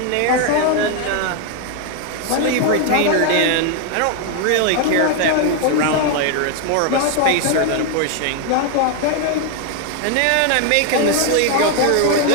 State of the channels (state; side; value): different; both; correlation 0.00